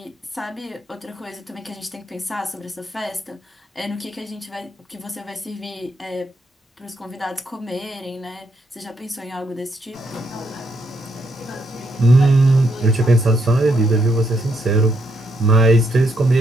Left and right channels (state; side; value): normal; both; correlation 0.76